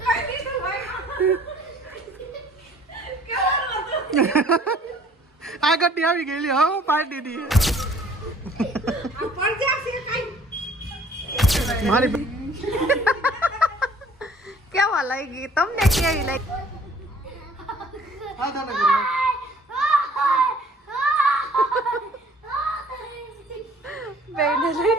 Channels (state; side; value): normal; both; correlation 0.55